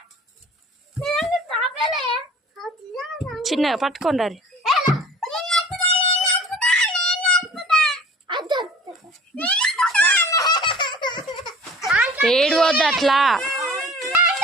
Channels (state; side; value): normal; both; correlation 0.46